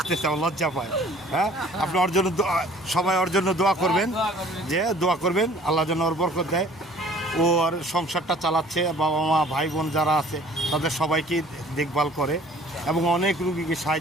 আমার লজ্জা পায়। হ্যাঁ, আপনি ওর জন্য সবাই ওর জন্য দোয়া করবেন, যে দোয়া করবেন আল্লাহ যেন ওর বরকত দেয়। ও আর সংসারটা চালাচ্ছে, বাবা মা ভাই বোন যারা আছে তাদের সবাইকে দেখভাল করে এবং অনেক রুগীকে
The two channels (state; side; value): normal; both; correlation 0.52